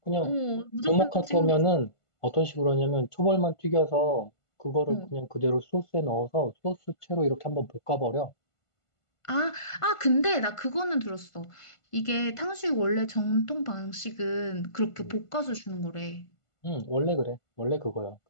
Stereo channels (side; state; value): right; late; 1.5 ms